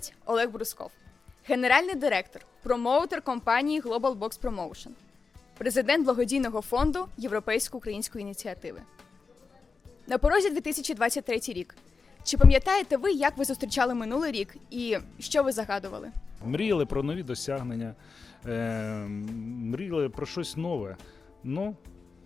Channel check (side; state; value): right; quieter; 4.7 dB